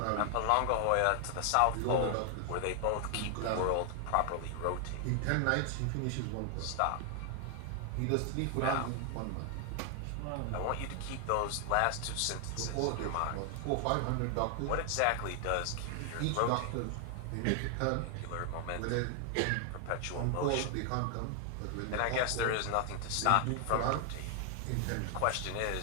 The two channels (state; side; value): different; both; correlation 0.00